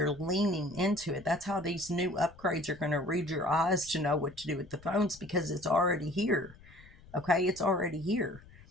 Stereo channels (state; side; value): noise; left; rumble, 22 dB below the sound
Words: leaning into it. That's how these new upgrades are going to read your eyes to know what to do with the phones, because it's already here. Okay, it's already here.